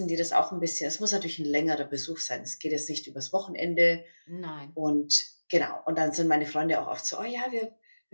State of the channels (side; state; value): both; inverted; correlation -1.00